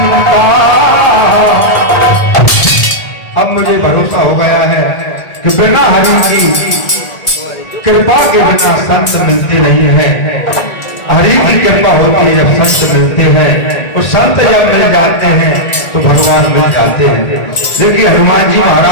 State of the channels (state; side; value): late; right; 1.8 ms